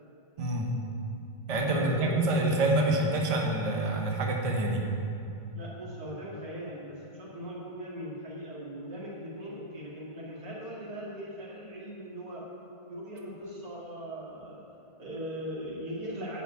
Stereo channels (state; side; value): late; right; 1.5 ms